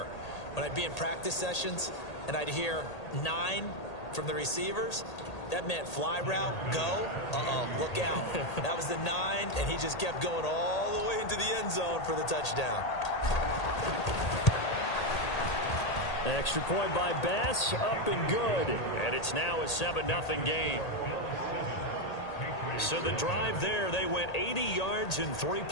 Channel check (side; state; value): right; late; 1.8 ms